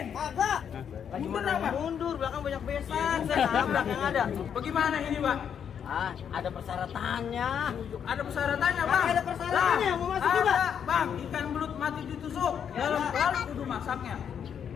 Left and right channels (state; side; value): quieter; right; 8.1 dB